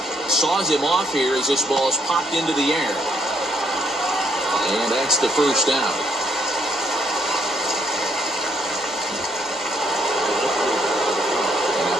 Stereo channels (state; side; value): normal; both; correlation 0.72